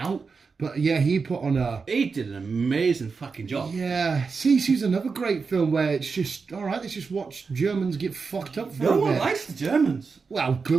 But yeah, he put on a. He did an amazing fucking job. Yeah, Sisu's another great film where it's just all right. Let's just watch Germans get fucked up for a bit. No one likes the Germans. Well,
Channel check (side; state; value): left; quieter; 4.9 dB